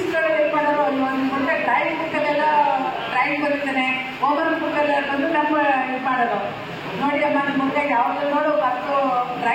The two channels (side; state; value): both; identical; correlation 1.00